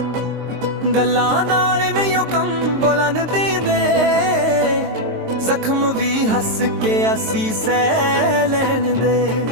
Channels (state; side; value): late; left; 23 ms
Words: ਗੱਲਾਂ ਨਾਲ ਨਹੀਂ ਉਹ ਕੰਮ ਬੋਲਣ ਦਿੰਦੇ, ਜ਼ਖਮ ਵੀ ਹੱਸ ਕੇ ਅਸੀਂ ਸਹਿ ਲੈਣ ਦੇ।